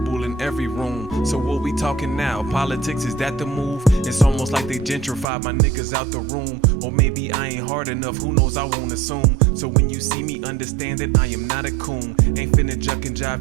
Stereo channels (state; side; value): drops out; left; at 5.2 s